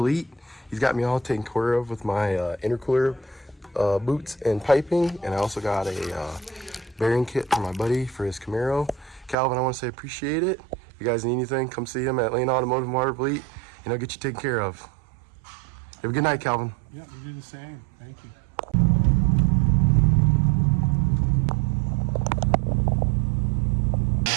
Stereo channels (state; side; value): drops out; left; at 9.3 s